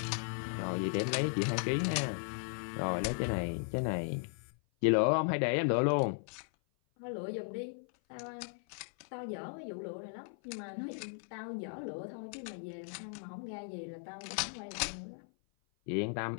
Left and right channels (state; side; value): silent; right; 53 dB below the other